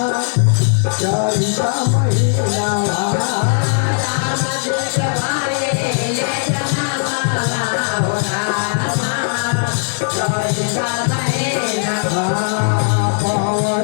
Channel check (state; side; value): silent; right; digital silence